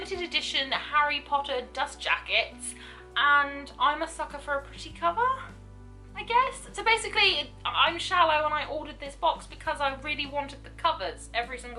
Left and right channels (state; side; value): identical; both; correlation 1.00